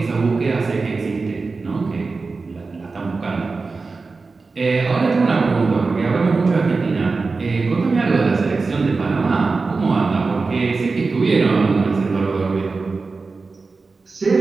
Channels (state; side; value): quieter; left; 4.1 dB